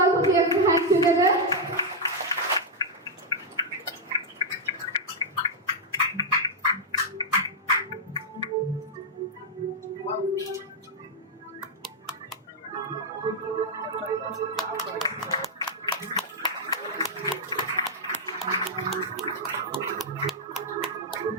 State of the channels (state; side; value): normal; both; correlation -0.02